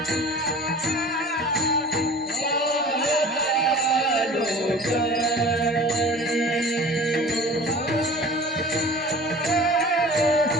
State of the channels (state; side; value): normal; both; correlation 0.42